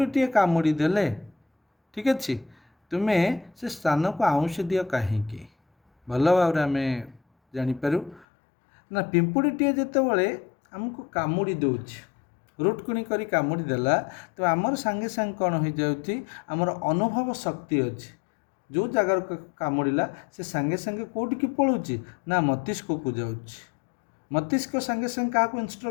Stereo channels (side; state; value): right; drops out; at 8.2 s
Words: କାମୁଡ଼ି ଦେଲେ, ଠିକ୍ ଅଛି, ତୁମେ ସେ ସ୍ଥାନକୁ ଆଉଁସି ଦିଅ କାହିଁକି। ଭଲ ଭାବରେ ଆମେ ଜାଣିପାରୁ ନା ପିମ୍ପୁଡ଼ିଟିଏ ଯେତେବେଳେ ଆମକୁ କାମୁଡ଼ି ଦେଉଛି, ରୁଟକୁଣି କରି କାମୁଡ଼ି ଦେଲା, ତ ଆମର ସାଙ୍ଗେ ସାଙ୍ଗେ କ'ଣ ହୋଇଯାଉଛି ଆମର ଅନୁଭବ ଶକ୍ତି ଅଛି। ଯେଉଁ ଜାଗାରୁ କାମୁଡ଼ିଲା ସେ ସାଙ୍ଗେ ସାଙ୍ଗେ କେଉଁଠିକି ପଳାଉଛି ନା ମସ୍ତିଷ୍କକୁ ଯାଉଛି। ମସ୍ତିଷ୍କ ସାଙ୍ଗେ ସାଙ୍ଗେ କାହାକୁ